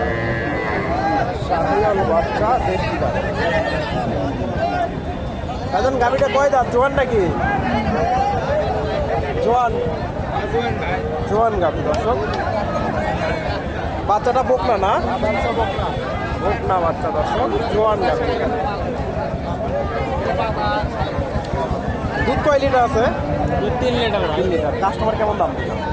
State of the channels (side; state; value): both; identical; correlation 1.00